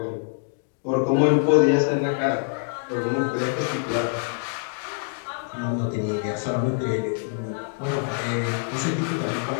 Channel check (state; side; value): silent; right; 62 dB below the other